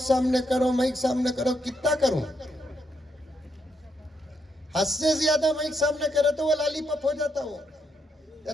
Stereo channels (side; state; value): both; normal; correlation 0.78